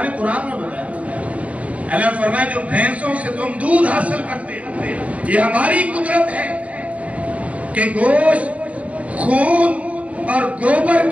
نے قرآن میں بتایا، اللہ فرمایا جو بھینسوں سے تم دودھ حاصل کرتے ہو، یہ ہماری قدرت ہے کہ گوشت، خون اور گوبر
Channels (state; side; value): late; left; 0.067 ms